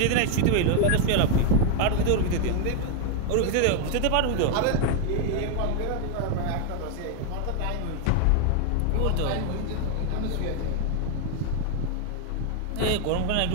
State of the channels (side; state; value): both; different; correlation 0.01